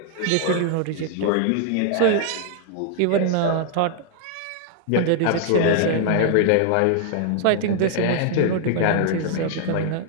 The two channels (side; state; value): both; different; correlation 0.00